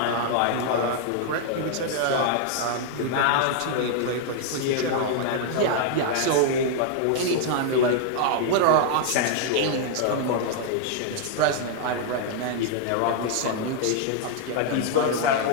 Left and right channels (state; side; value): different; both; correlation -0.01